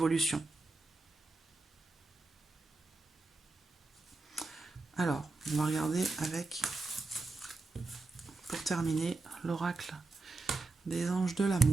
Alors, on va regarder avec, pour terminer, l'oracle des anges de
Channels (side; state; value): left; quieter; 3.4 dB